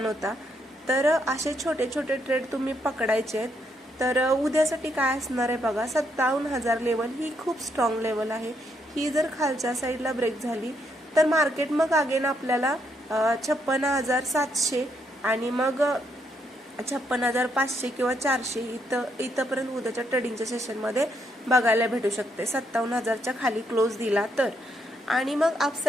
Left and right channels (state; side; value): normal; both; correlation 0.75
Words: होता. तर असे छोटे छोटे ट्रेड तुम्ही पकडायचे आहेत. तर उद्यासाठी काय असणार आहे बघा, 57,000 लेवल ही खूप स्ट्रॉंग लेवल आहे. ही जर खालच्या साईडला ब्रेक झाली तर मार्केट मग अगेन आपल्याला 56,700 आणि मग 56,500 किंवा 400 इथंपर्यंत उद्याच्या ट्रेडिंगच्या सेशनमध्ये बघायला भेटू शकते 57,000च्या खाली क्लोज दिला तर. आणि मग